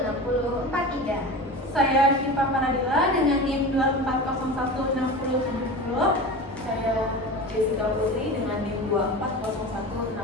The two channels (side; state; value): both; normal; correlation 0.30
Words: Saya Syifa Panadila dengan NIM 24016070. Saya Jessica Putri dengan NIM